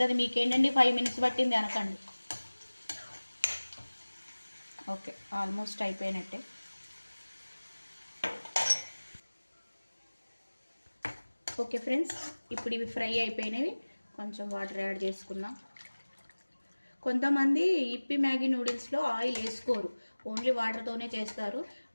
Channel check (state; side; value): inverted; both; correlation -1.00